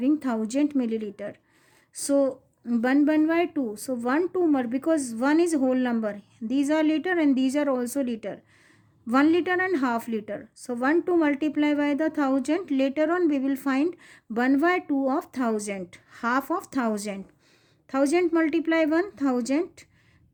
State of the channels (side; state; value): both; identical; correlation 1.00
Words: 1000 milliliter. So 1/2. So 1 2 more because 1 is whole number. These are liter and these are also liter. 1 liter and half liter. So 1 to multiply by the 1000. Later on we will find 1/2 of 1000. Half of 1000. 1000 multiply 1000.